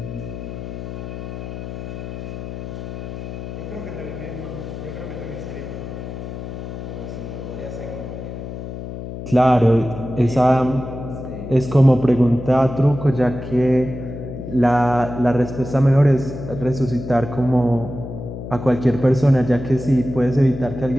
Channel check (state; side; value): noise; left; hum, 8 dB below the sound